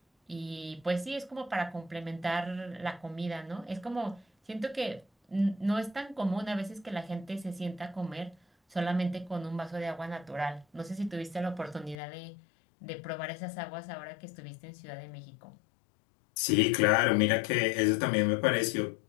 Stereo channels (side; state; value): right; drops out; at 12.0 s